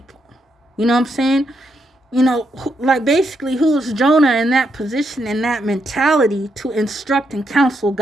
You know what I'm saying? You know, like basically, who is Jonah in that position, in that mentality, to instruct and counsel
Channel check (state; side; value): normal; both; correlation 0.79